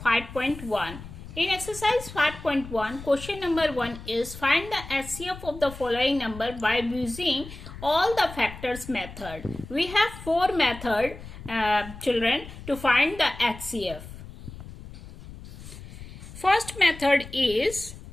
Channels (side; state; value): left; noise; rumble, 14 dB below the sound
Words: 5.1. In exercise 5.1 question number 1 is find the HCF of the following number by using all the factors method. We have 4 methods children to find the HCF. First method is